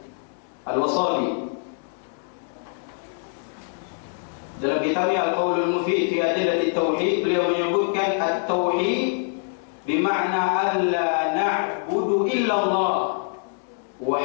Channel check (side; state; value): right; silent; digital silence